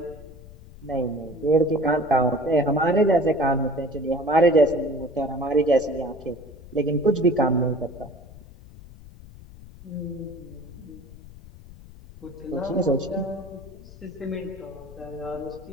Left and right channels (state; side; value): noise; left; rumble, 18 dB below the sound